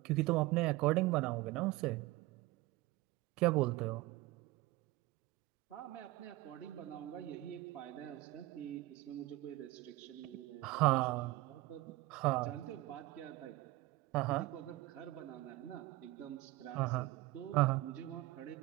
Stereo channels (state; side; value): quieter; left; 18.9 dB